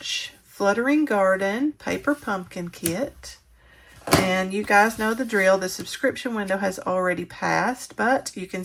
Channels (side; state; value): both; identical; correlation 1.00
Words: Fluttering Garden Paper Pumpkin Kit. And you guys know the drill. The subscription window has already passed, but you can